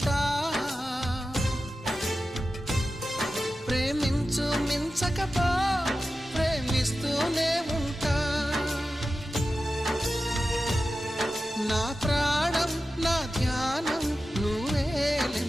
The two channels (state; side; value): normal; both; correlation 0.93